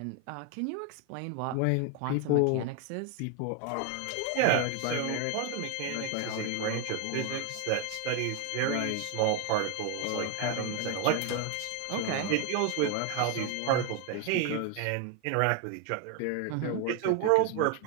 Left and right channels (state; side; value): different; both; correlation 0.01